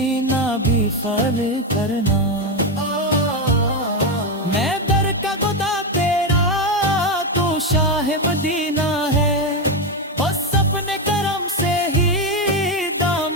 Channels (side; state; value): both; normal; correlation 0.09